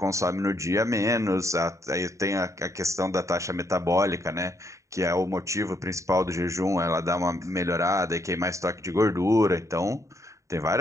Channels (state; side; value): late; left; 0.15 ms